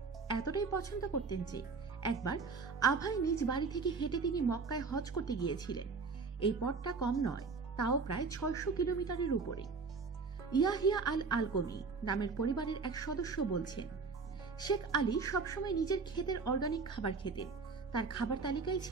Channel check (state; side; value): quieter; left; 4.7 dB